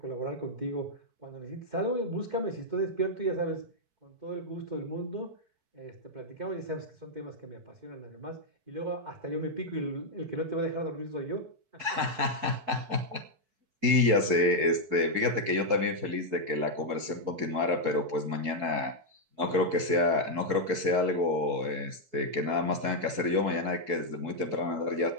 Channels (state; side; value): late; left; 4.6 ms